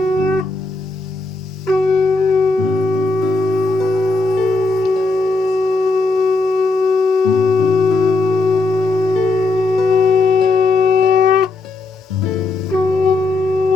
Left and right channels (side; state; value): right; quieter; 3.4 dB